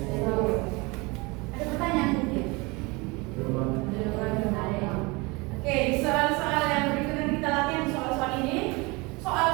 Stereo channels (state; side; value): quieter; left; 25.9 dB